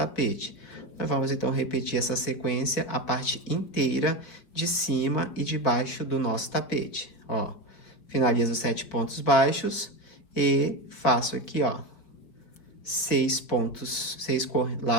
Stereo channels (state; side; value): late; right; 4.6 ms